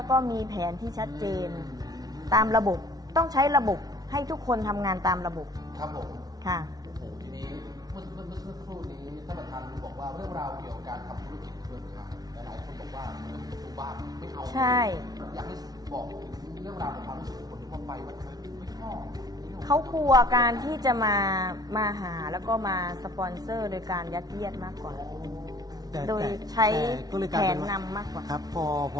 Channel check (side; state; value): left; late; 0.19 ms